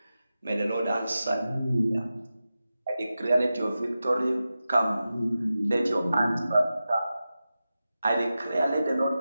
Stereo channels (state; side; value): inverted; both; correlation -0.93